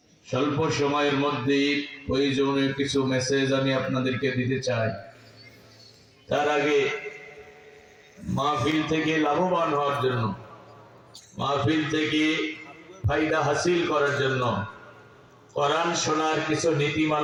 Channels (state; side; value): identical; both; correlation 1.00